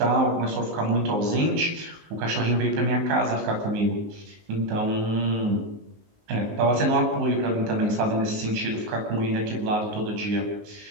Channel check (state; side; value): late; left; 19 ms